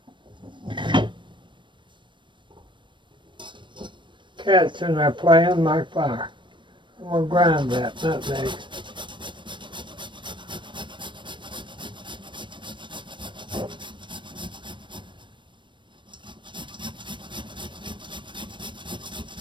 Cat's in there playing like fire. I'm going to grind that nutmeg.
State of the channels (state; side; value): late; left; 0.23 ms